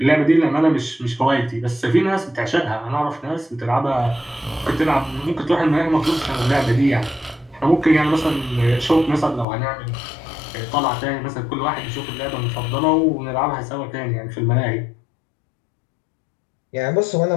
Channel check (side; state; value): right; drops out; at 9.5 s